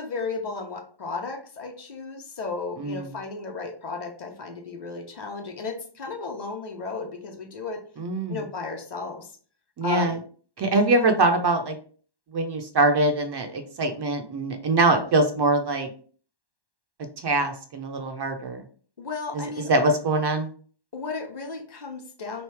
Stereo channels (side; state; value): left; late; 1.1 ms